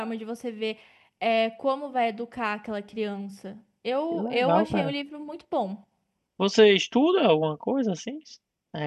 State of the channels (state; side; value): identical; both; correlation 1.00